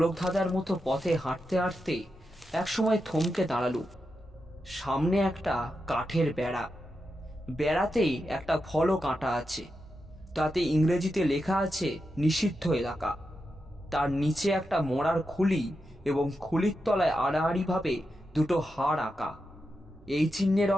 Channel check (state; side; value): normal; both; correlation 0.88